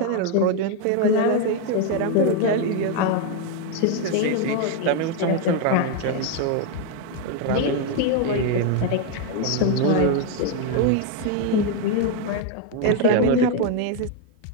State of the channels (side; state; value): both; different; correlation 0.01